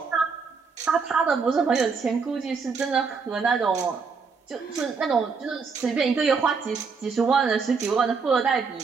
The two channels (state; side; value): quieter; left; 5.1 dB